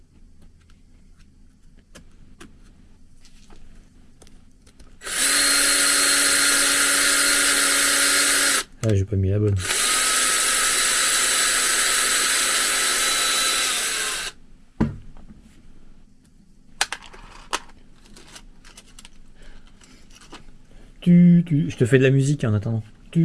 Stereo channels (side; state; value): both; identical; correlation 1.00